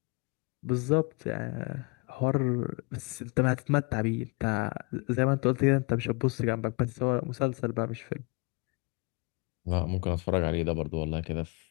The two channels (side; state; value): right; quieter; 28.5 dB